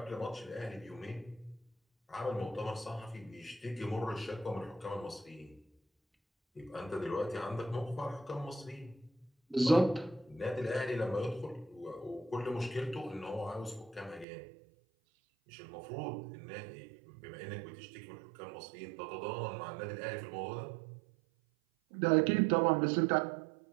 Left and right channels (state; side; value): drops out; left; at 14.2 s